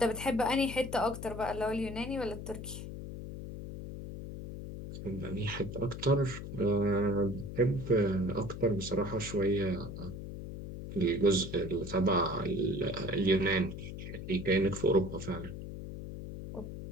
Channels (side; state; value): left; noise; hum, 9 dB below the sound